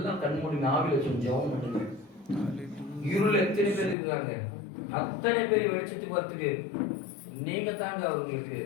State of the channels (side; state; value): right; drops out; at 4.0 s